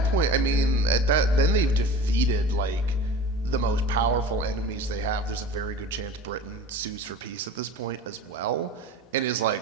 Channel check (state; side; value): normal; both; correlation 0.38